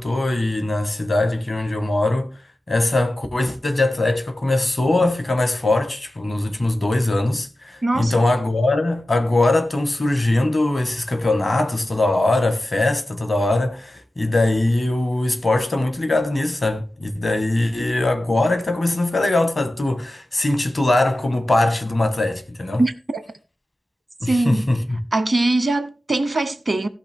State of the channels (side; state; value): both; normal; correlation 0.94